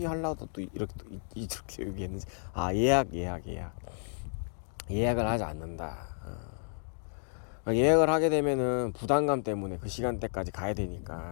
하려고 또 이렇게 얘기했는지 예약을 하지 않는다. 예약을 하게 되면은 부담감 때문에 그 시간대까지 가야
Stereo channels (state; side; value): silent; right; digital silence